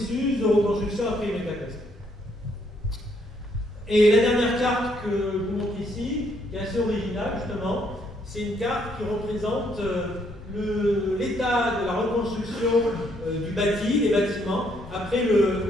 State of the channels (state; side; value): normal; both; correlation 0.71